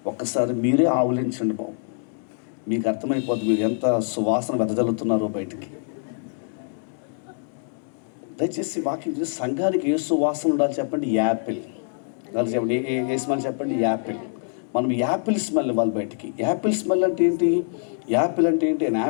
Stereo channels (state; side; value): silent; right; digital silence